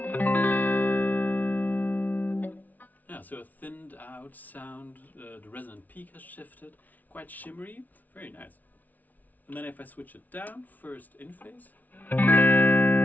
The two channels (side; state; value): right; late; 0.077 ms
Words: yeah, so a thinned out sound, the resonant peak has shifted, quite shimmery, very nice. And then if I switch it down, first in phase. Now